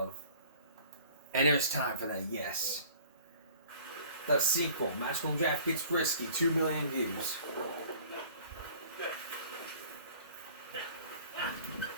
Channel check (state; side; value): inverted; both; correlation -0.50